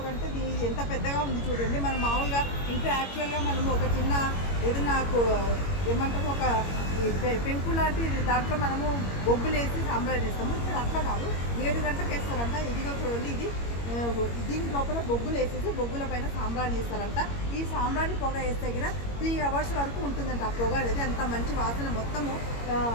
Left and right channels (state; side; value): late; right; 21 ms